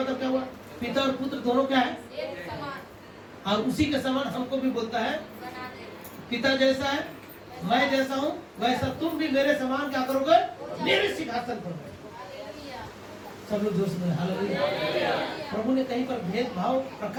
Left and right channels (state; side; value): identical; both; correlation 1.00